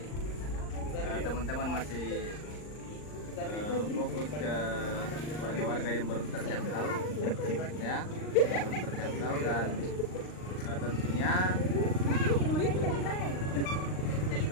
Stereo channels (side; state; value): right; late; 39 ms